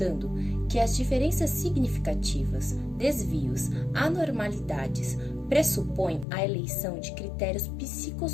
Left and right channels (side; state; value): right; drops out; at 6.2 s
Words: que as diferenças significativas, desvios, anormalidades pressupõem a eleição de critérios